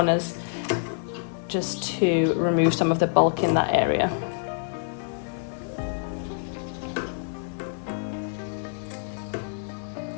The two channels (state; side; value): silent; right; digital silence